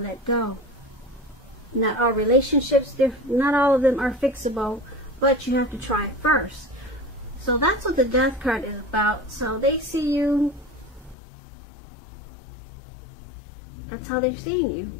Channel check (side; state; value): right; drops out; at 11.2 s